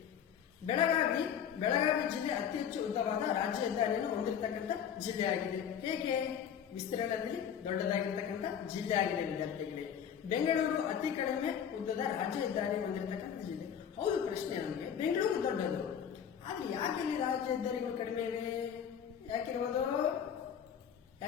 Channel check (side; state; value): right; quieter; 8.5 dB